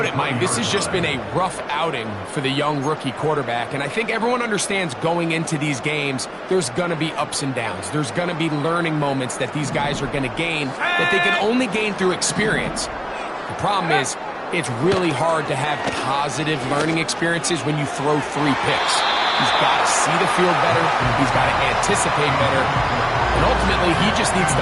it, Mike. This has just been a rough outing for the young rookie quarterback, and I think everyone understands going into these games, there's going to be ups and downs. There's going to be learning moments that these guys are going to gain that they can only gain through experience. The problem is, it's really hard to have positive learning experiences when you throw 3 picks. He's got to see the field better. He's got to anticipate better. And ultimately, he just needs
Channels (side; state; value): both; identical; correlation 1.00